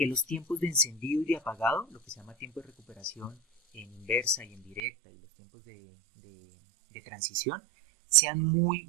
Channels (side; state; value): left; drops out; at 4.8 s